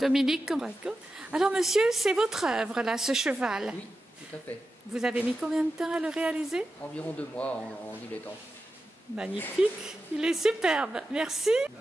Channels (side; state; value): both; normal; correlation 0.91